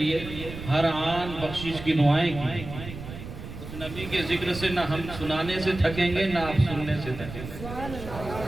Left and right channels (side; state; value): right; noise; rumble, 11 dB below the sound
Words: ہر آن بخشش کی دعائیں کی، اس نبی کے ذکر سے نہ ہم سنانے سے تھکیں گے نہ آپ سننے سے تھکیں